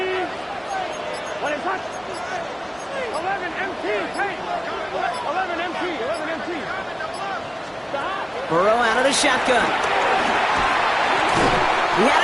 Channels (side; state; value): both; identical; correlation 1.00